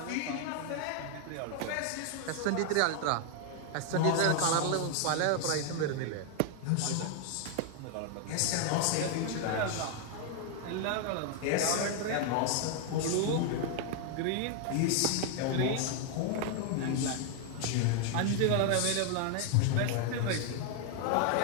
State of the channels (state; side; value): different; both; correlation 0.00